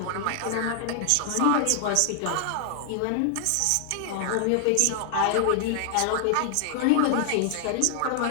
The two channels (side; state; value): both; different; correlation 0.00